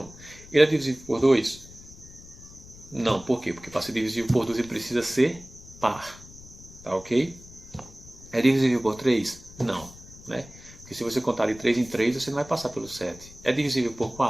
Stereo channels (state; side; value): noise; left; rumble, 19 dB below the sound